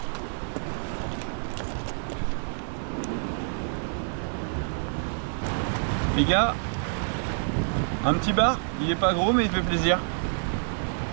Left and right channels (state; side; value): silent; left; 59 dB below the other